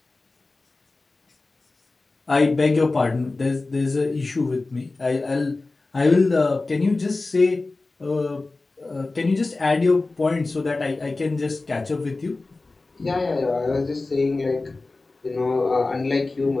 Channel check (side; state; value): right; quieter; 3.4 dB